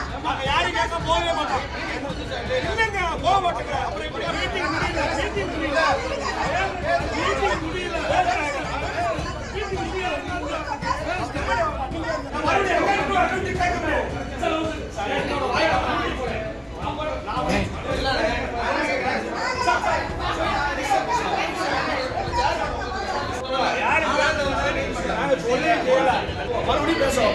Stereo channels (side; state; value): both; identical; correlation 1.00